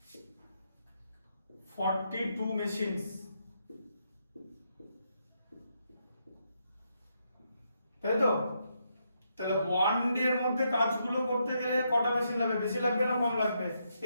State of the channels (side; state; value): both; inverted; correlation -0.79